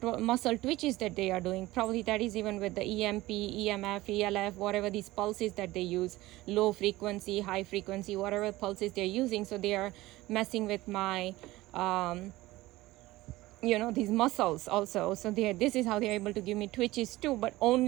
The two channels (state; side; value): quieter; left; 18.3 dB